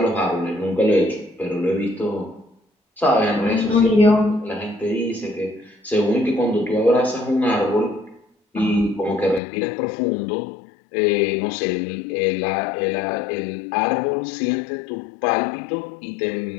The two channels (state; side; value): drops out; right; at 9.4 s